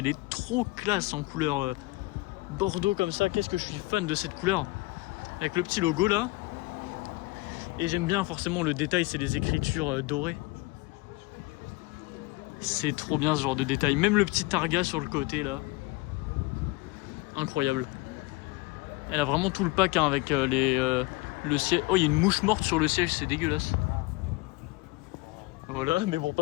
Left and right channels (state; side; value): quieter; right; 23.0 dB